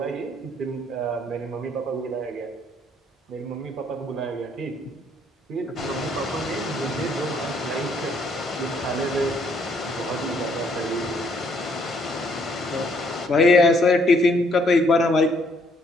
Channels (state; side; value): normal; both; correlation 0.67